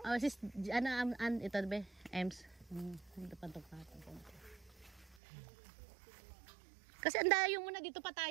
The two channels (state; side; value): drops out; left; at 5.2 s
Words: Oh, sis, ito ba? Ems. Hindi pa patong konti. Kasi andayo muna dito pa